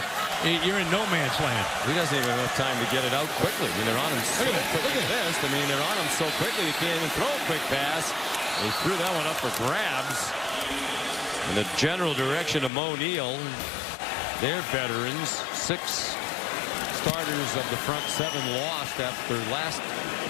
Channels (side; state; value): right; drops out; at 12.7 s